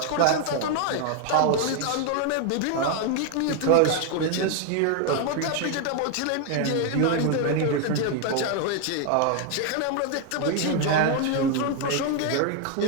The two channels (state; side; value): different; both; correlation 0.01